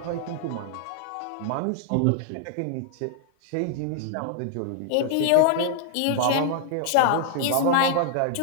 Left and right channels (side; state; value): both; different; correlation 0.00